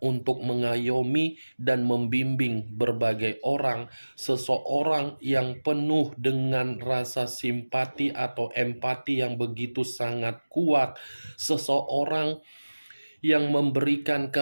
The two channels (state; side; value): inverted; both; correlation -1.00